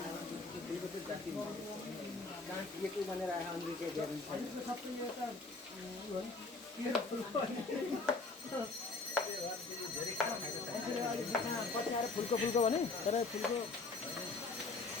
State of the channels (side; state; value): right; quieter; 3.8 dB